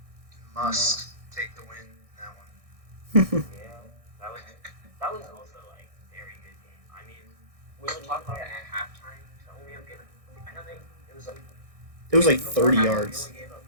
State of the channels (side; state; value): left; late; 1.6 ms